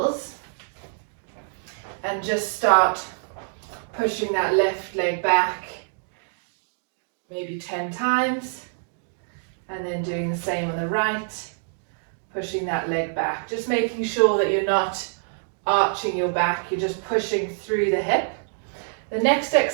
and just start pushing that left leg back maybe 10 times, and then doing the same on the right, pushing that leg back. Just making sure that you're not arching your back, you're just pushing through the hip. The next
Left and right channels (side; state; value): left; silent; digital silence